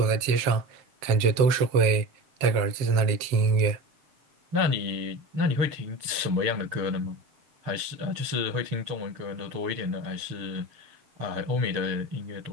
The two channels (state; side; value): late; left; 6.7 ms